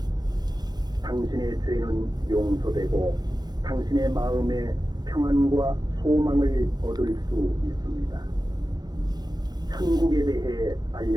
당신의 죄는 용서되고 당신의 마음에 평안과 소망을 얻을 수 있습니다. 천국에 대해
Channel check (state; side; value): late; left; 0.19 ms